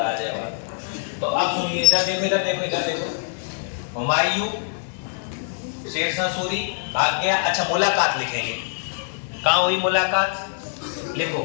आ जाएगा। तो अब सुनिए, इधर देखो, इधर देखो, इधर देखो। हुमायूं शेरशाह सूरी भाग गया। अच्छा, मुलाकात लिखेंगे। कहाँ हुई मुलाकात? लिखो,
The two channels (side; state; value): right; silent; digital silence